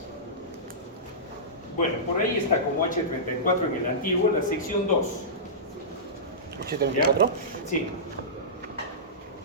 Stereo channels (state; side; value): normal; both; correlation -0.18